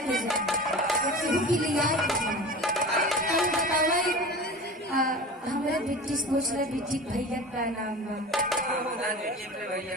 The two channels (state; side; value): normal; both; correlation 0.34